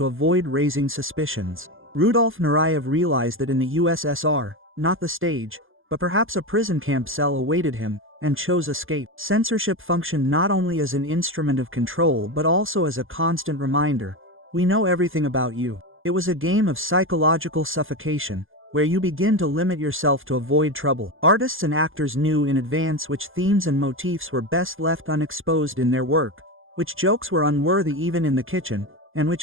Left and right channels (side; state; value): left; late; 0.59 ms